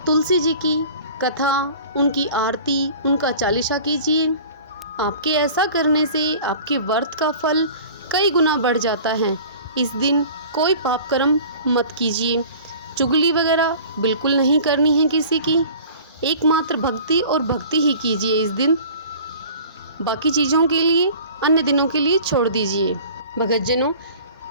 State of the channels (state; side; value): inverted; both; correlation -0.44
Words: तुलसी जी की कथा, उनकी आरती, उनका चालीसा कीजिए। आपके ऐसा करने से आपके व्रत का फल कई गुना बढ़ जाता है। इस दिन कोई पाप कर्म मत कीजिए। चुगली वगैरह बिल्कुल नहीं करनी है किसी की। एकमात्र भक्ति और भक्ति ही कीजिए इस दिन। बाकी चीज़ों के लिए अन्य दिनों के लिए छोड़ दीजिए। भगतजनों,